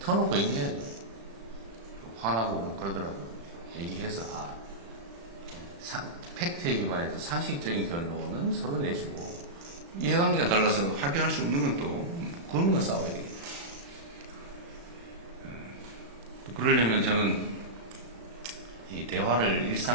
얘기해야죠. 화나고 뭐 그러더라도 얘기해서 팩트에 기반해서 상식적인 결론은 서로 내주고, 이해관계가 달라서 합의할 수 없는 건 또 그런 건 싸워야 되겠죠. 또 그러려면 저는 이 대화를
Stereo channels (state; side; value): late; left; 35 ms